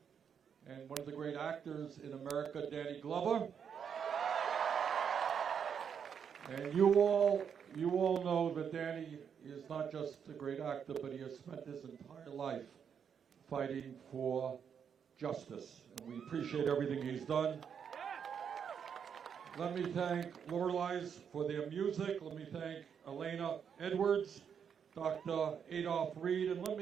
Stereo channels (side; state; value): left; quieter; 7.5 dB